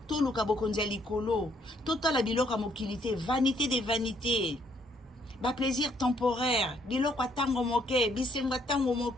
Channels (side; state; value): both; normal; correlation 0.69